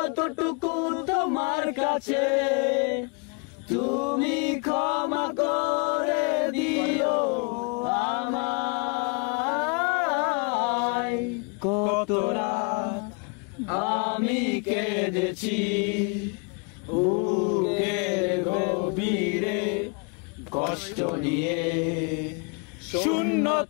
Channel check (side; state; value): right; quieter; 34.4 dB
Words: তোমার কাছে, তুমি ক্ষমা করে দিও আমায়। কত রাত আমি কেঁদেছি বুকের গভীরে কষ্ট নিয়ে,